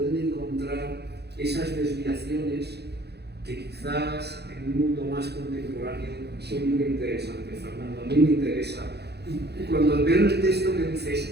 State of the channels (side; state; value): left; late; 0.48 ms